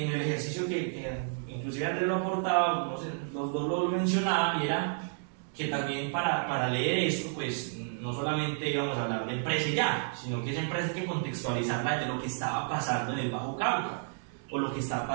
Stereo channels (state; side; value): silent; left; digital silence